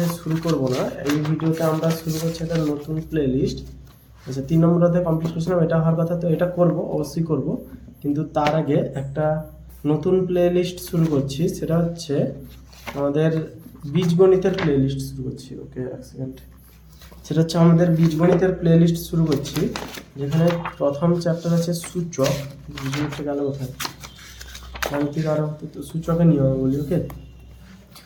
শুরু করব না, এই ভিডিওতে আমরা শুরু করছি একটা নতুন প্লে লিস্ট। আচ্ছা, 3 নম্বর অধ্যায় কমপ্লিট করেছিলাম, এটা হওয়ার কথা, তো এটা করব, অবশ্যই করব, কিন্তু তার আগে একটা নতুন প্লে লিস্ট শুরু করছি। সেটা হচ্ছে আমাদের বীজগণিতের প্লে লিস্ট শুরু করছি। ওকে, এক সেকেন্ড। সেটা হচ্ছে আমাদের বীজগণিতের প্লে লিস্ট শুরু করছি, যেখানে প্রথম চ্যাপ্টার আছে সূচক। বীজগণিতটা গেল কোথায়, গাণিতিক আরো তো সূচকের নিয়ম বলি। ওকে,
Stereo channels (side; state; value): both; identical; correlation 1.00